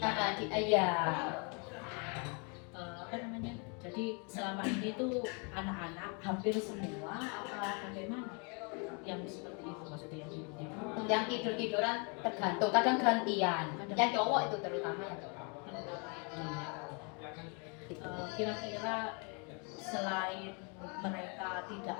Iya. Apa namanya? Jadi selama ini tuh anak-anak hampir semua apa bagaimana? Yang seperti itu maksudnya yang tidur-tidur. Yang tidur-tiduran tergantung, kadang gantian. Yang cowok itu terutama yang cowok. Kira-kira selain mereka tidak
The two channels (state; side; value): quieter; right; 34.8 dB